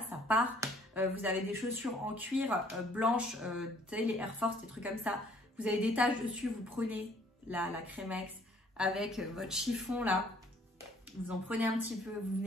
ça part. Vous avez des chaussures en cuir blanches, vous savez les Air Force, des trucs comme ça. Vous avez des taches dessus, vous prenez la Crémex avec votre chiffon là. Vous en prenez un petit peu, vous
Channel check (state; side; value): normal; both; correlation 0.60